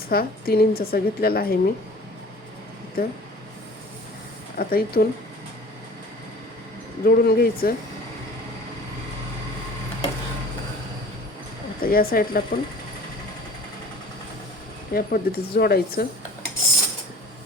हा 3 इंचाचा घेतलेला आहे मी इथं. आता इथून जोडून घ्यायचं. आता या साईडला पण या पद्धतीचं जोडायचं.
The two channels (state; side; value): normal; both; correlation 0.45